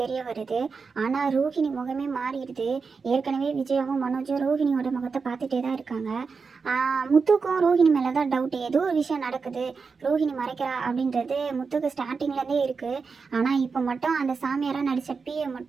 தெரிய வருது. ஆனால் ரோஹிணி முகமே மாறிடுது. ஏற்கனவே விஜயாவும் மனோஜும் ரோஹிணியோட முகத்தை பார்த்துட்டே தான் இருக்காங்க. முத்துக்கும் ரோஹிணி மேலே தான் டவுட்டு. ஏதோ ஒரு விஷயம் நடக்குது, ரோஹிணி மறைக்கிறா அப்படின்றது முத்துக்கு ஸ்டார்டிங்லேருந்தே இருக்குது. ஆனால் இப்போ மட்டும் அந்த சாமியாராக நடித்த பிஏ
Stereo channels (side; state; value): left; quieter; 5.0 dB